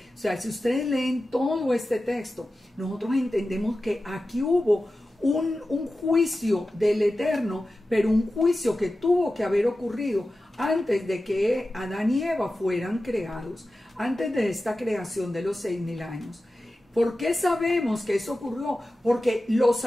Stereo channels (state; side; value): normal; both; correlation 0.94